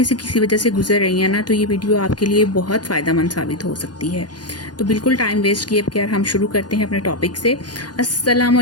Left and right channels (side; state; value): right; late; 0.70 ms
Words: से किसी वजह से गुजर रही हैं ना तो ये वीडियो आपके लिए बहुत फ़ायदेमंद साबित हो सकती है। तो बिल्कुल टाइम वेस्ट किए बगैर हम शुरू करते हैं अपने टॉपिक से। अस्सलाम